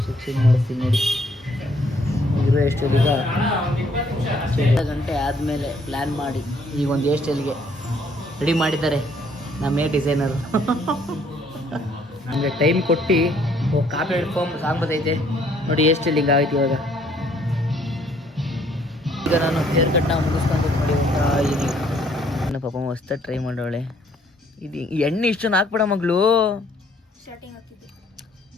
ಶಿಕ್ಷಣ ಮಾಡಿಸ್ತೀನಿ ನೋಡಿ. ಇರೋ ಎಷ್ಟು ಈಗ 2 ಗಂಟೆ ಆದಮೇಲೆ ಪ್ಲ್ಯಾನ್ ಮಾಡಿ ಈಗ ಒಂದು ಹೇರ್ ಸ್ಟೈಲ್ಗೆ ರೆಡಿ ಮಾಡಿದ್ದಾರೆ ನಮ್ಮ ಹೇರ್ ಡಿಸೈನರು. ನಮಗೆ ಟೈಮ್ ಕೊಟ್ಟು ಕಾಪಿ ಫಾರ್ಮ್ ಸಾಂಗ್ ಬರ್ತೈತೆ ನೋಡಿ. ಹೇರ್ ಸ್ಟೈಲ್ ಹಿಂಗೆ ಆಯ್ತು ಇವಾಗ. ಈಗ ನಾನು ಹೇರ್ ಕಟ್ನ ಮುಗಿಸ್ಕೊಂಡು ನೋಡಿ ಒಂಥರ ಇದೀನಿ. ನನ್ನ ಪಾಪ ಹೊಸ್ದಾಗಿ ಟ್ರೈ ಮಾಡೋಳೆ. ಇದು ಎಣ್ಣೆ ಇಷ್ಟೊಂದು ಹಾಕ್ಬೇಡ ಮಗಳು.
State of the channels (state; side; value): normal; both; correlation 0.64